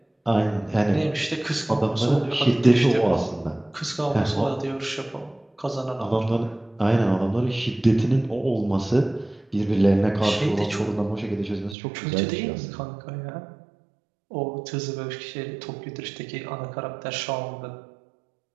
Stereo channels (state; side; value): drops out; left; at 11.8 s